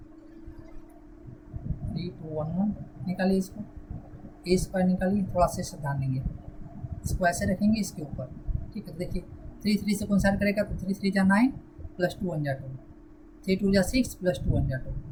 3 2 1 1 निकालिए इसको, ए स्क्वायर निकालिए, थोड़ा सा ध्यान देंगे, इसको ऐसे रखेंगे इसके ऊपर, ठीक है। तो देखिए 3 3 से कैंसिल करेगा तो 3 3 जा 9 प्लस 2 1 जा 2, 3 2 जा 6 प्लस 2 1 जा 2,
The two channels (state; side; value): identical; both; correlation 1.00